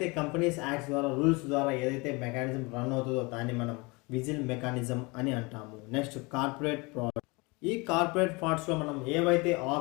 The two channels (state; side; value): quieter; right; 26.8 dB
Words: companies acts ద్వారా rules ద్వారా ఏదైతే mechanism run అవుతుందో దాన్ని మనం whistle mechanism అని అంటాము. Next corporate fraud. ఈ కార్పొరేట్ ఫ్రాడ్స్లో మనం ఏవైతే